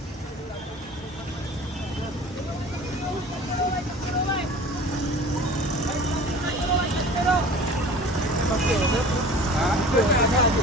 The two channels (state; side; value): normal; both; correlation 0.42